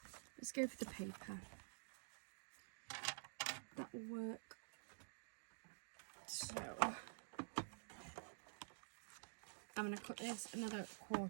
Let's go for the paper. That will work. So I'm going to cut this another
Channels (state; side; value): silent; left; digital silence